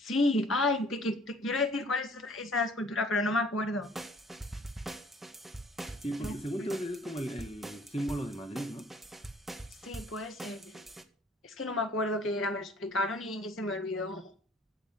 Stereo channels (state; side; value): normal; both; correlation 0.55